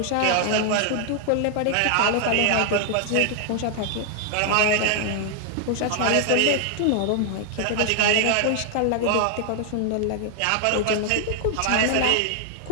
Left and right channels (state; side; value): different; both; correlation 0.00